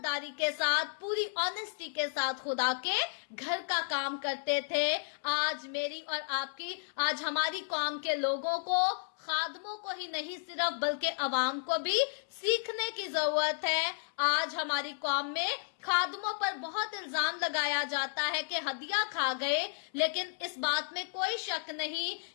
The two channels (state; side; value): silent; right; 56 dB below the other